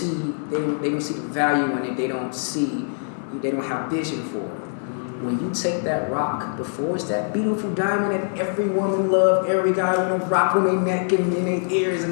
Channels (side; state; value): right; silent; 62 dB below the other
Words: the value in it. They don't have vision for it. When you take that rock, before it's that beautiful diamond that every woman loves, every guy want to rock on their neck and in their ears